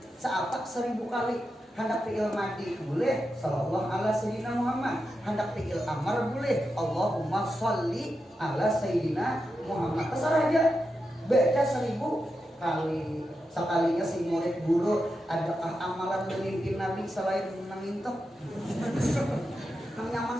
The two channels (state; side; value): normal; both; correlation 0.88